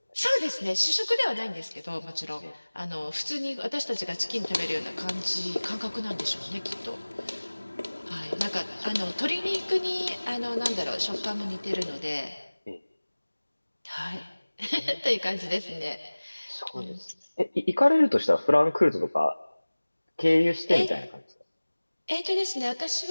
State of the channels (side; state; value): both; inverted; correlation -1.00